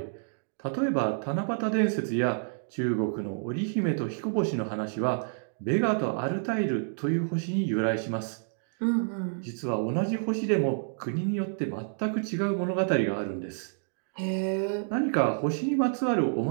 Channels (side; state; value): left; silent; digital silence